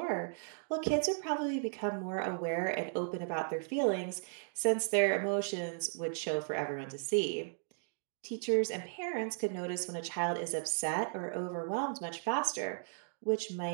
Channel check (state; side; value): silent; left; digital silence